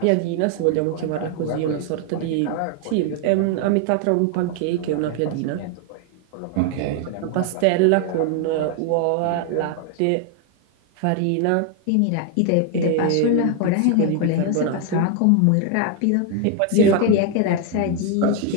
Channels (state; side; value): different; both; correlation 0.00